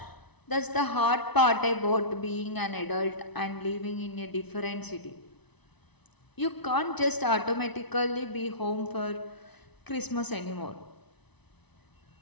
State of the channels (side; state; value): right; late; 0.99 ms